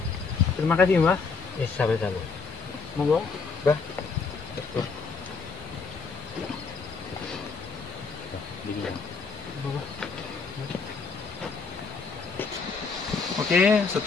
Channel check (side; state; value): right; quieter; 4.8 dB